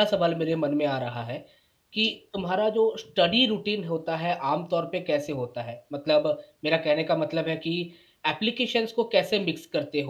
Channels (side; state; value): both; identical; correlation 1.00